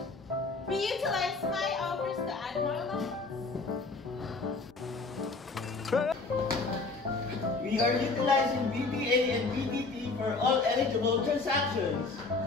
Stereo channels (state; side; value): quieter; right; 3.8 dB